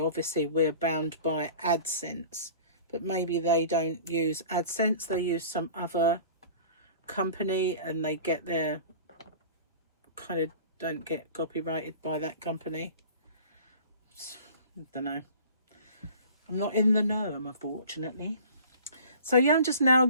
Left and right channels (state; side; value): inverted; both; correlation -0.43